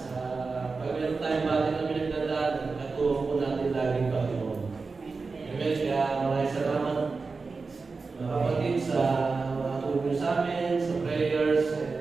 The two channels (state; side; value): quieter; left; 4.3 dB